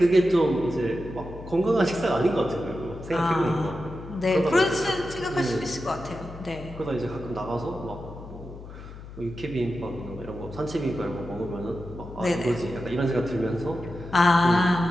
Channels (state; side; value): noise; left; hum, 14 dB below the sound